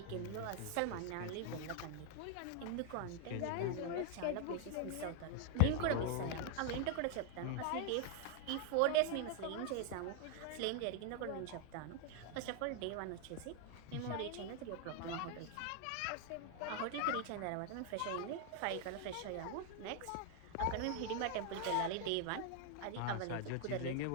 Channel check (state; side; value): different; both; correlation 0.00